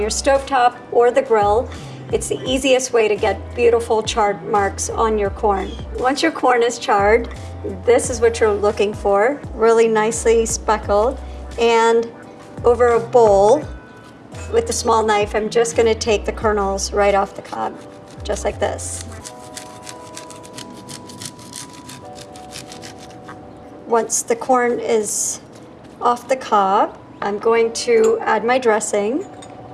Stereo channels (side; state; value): both; identical; correlation 1.00